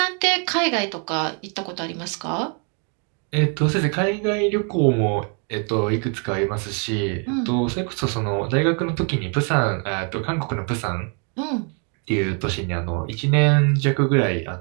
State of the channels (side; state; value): left; quieter; 39.1 dB